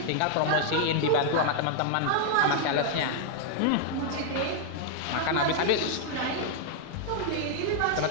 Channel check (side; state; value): both; different; correlation 0.00